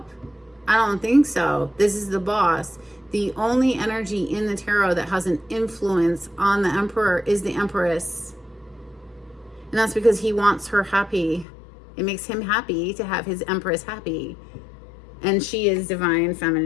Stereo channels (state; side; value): drops out; right; at 11.5 s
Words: I don't think so. This is the boss. The only energy in the tarot that has an influence on the Emperor is the Empress. And that's because he wants her happy. It makes him happy to have his Empress happy. And she is divine